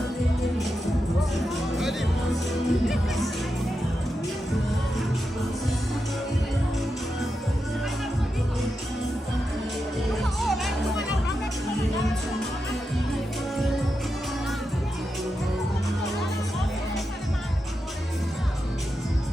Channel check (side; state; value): both; normal; correlation 0.88